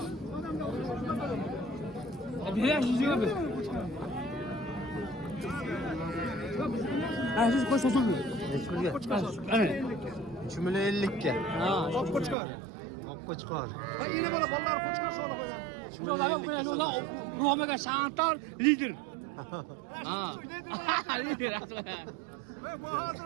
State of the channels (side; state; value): left; drops out; at 12.4 s